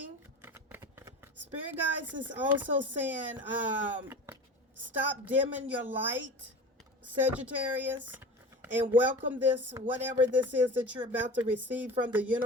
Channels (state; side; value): normal; both; correlation 0.34